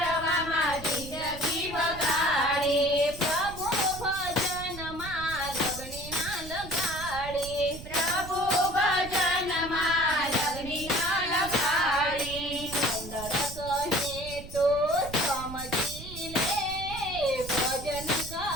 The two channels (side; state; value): right; noise; rumble, 12 dB below the sound